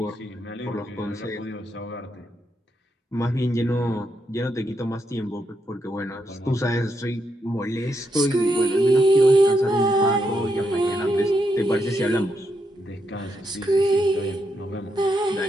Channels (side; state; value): both; normal; correlation 0.81